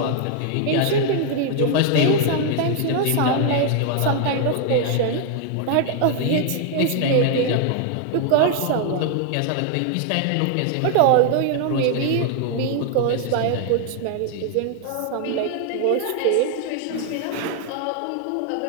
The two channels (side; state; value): both; different; correlation 0.00